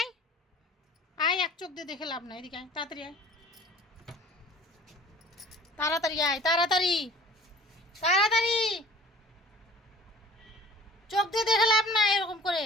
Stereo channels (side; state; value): both; normal; correlation 0.47